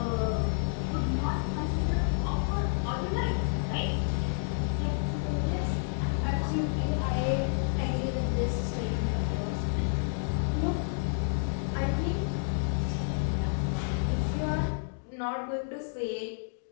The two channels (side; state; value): right; silent; digital silence